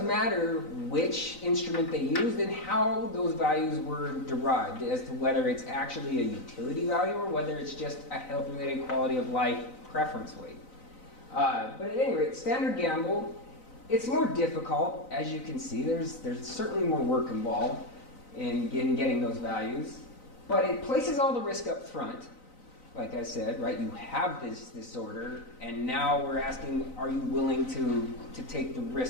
which instrument they used and how those values were derived as to whether it's actually a utility value or whether it's just a health-related quality of life preference weight. But at any rate, standard gamble, it's more difficult, as you can see. There's certainly more work involved in getting those values, but it places all the risk up front. Like I said, right, you have this disorder, and now we're asking, are you willing to take the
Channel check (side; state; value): right; late; 3.9 ms